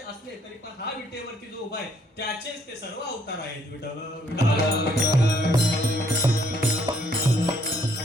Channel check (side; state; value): both; normal; correlation 0.67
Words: असले तरी पण हा विटेवरती जो उभा आहे त्याचेच ते सर्व अवतार आहेत विठ्ठल